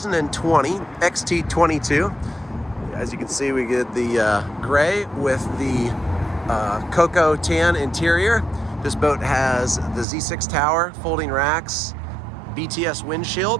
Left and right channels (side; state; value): left; drops out; at 10.1 s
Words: XT22. As you can see, we get the gray with the cocoa tan interior. This boat has the Z6 tower, folding racks, BTS